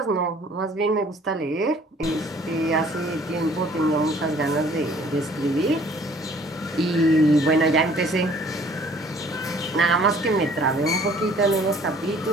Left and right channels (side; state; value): both; normal; correlation 0.56